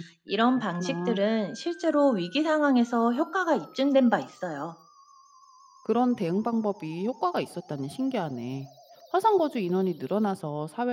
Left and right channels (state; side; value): identical; both; correlation 1.00